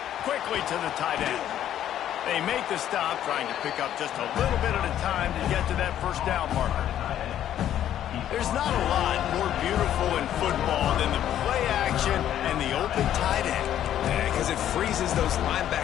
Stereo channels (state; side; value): quieter; right; 11.1 dB